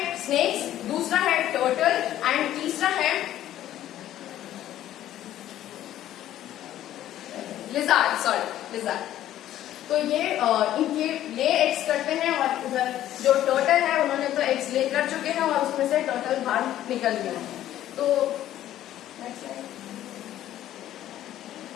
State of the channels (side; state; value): right; quieter; 12.6 dB